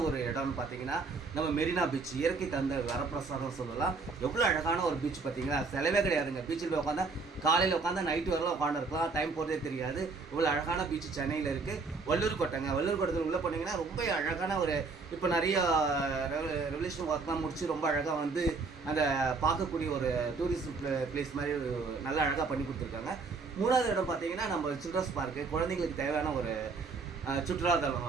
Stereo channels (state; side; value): quieter; left; 4.3 dB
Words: ஒரு இடம்னு பார்த்தீங்கன்னா நம்ம மெரினா பீச், இயற்கை தந்த வரப்பிரசாதம் சொல்லலாம். எவ்வளோ அழகான ஒரு பீச் பார்த்தீங்கன்னா, செலவே கிடையாதுங்க. பீச்சில் போய் உட்காந்தா காலையில் உட்காந்தா நைட்டு வரலாம் உட்காந்துருக்கலாம், டைம் போகிறதே தெரியாது. இவ்வளோ அழகான பீச் சென்னையில் இருக்குது. வள்ளூர் கோட்டைங்க, வள்ளூர் கோட்டத்தில் உள்ளே போனீங்கன்னா ரொம்ப அழகான ஒரு, இப்போ நிறைய ரெவல்யூஷன் ஒர்க்லாம் முடிச்சு ரொம்ப அழகாக வந்து அந்த பார்க்கக்கூடிய ஒரு டூரிஸ்ட் பிளேஸ் மாதிரி நல்லா அழகாக பண்ணி கொடுத்துருக்காங்க. மூணாவது இடம் பார்த்தீங்கன்னா நம்ம சில்ட்ரன்ஸ் பார்க்கு, குழந்தைங்களுக்கு தேவையான ஒரு சுற்றுலாத்தலம்.